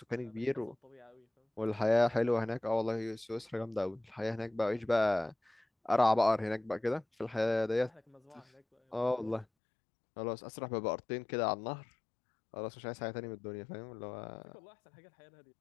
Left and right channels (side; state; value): right; drops out; at 9.5 s